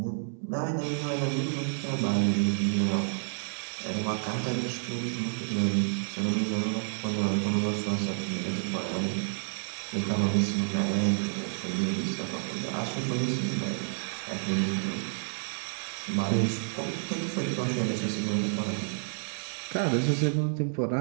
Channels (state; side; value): silent; left; 57 dB below the other